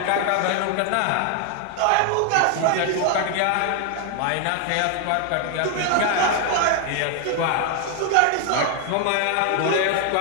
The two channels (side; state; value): both; different; correlation 0.00